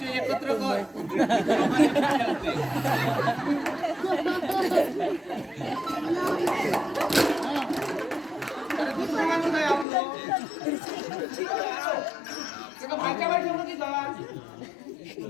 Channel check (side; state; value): right; drops out; at 9.9 s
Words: एकत्र कर. काय आपलं भाच्या बाई ठेवलं की जा